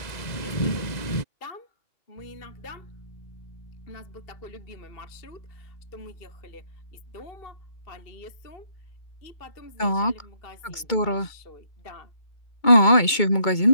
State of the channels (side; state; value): right; late; 2.2 ms